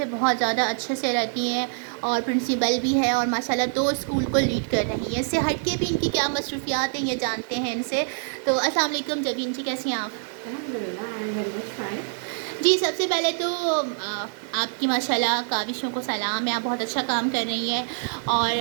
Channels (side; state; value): left; silent; digital silence